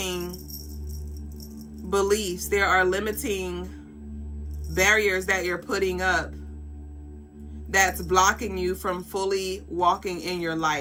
beliefs, there are limiting barriers that you're putting up that's blocking you from fully walking in your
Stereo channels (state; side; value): identical; both; correlation 1.00